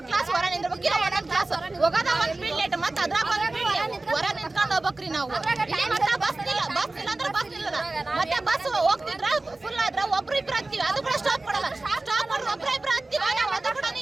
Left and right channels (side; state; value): left; quieter; 3.0 dB